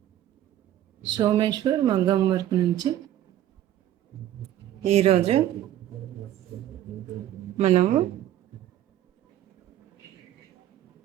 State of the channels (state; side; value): quieter; left; 12.4 dB